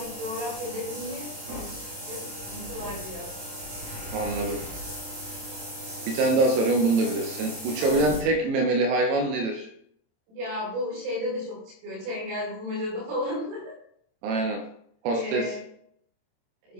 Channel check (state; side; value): late; left; 27 ms